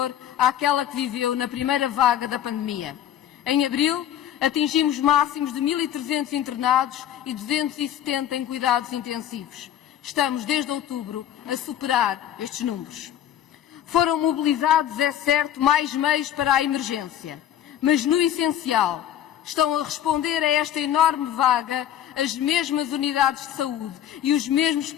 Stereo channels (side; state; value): right; quieter; 10.9 dB